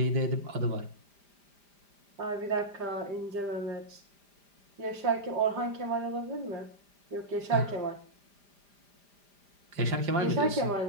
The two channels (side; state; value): left; late; 5.0 ms